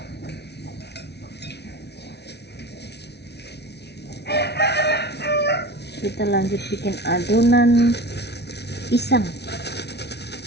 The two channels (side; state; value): right; late; 0.49 ms